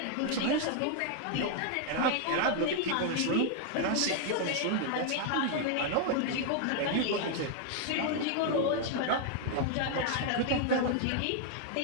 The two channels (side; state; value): both; different; correlation 0.00